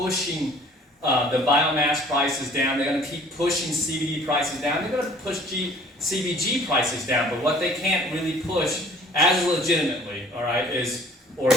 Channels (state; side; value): normal; both; correlation 0.52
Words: the biomass prices down. They're going to keep pushing CBD prices down. They're going to push CBG prices down, but what they can't really push as legitimately, all right, is